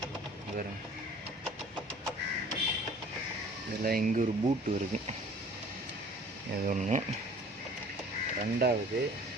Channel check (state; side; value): normal; both; correlation 0.50